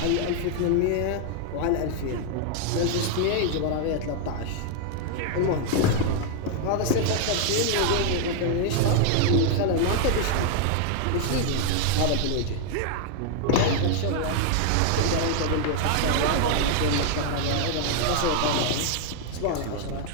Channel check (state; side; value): different; both; correlation 0.00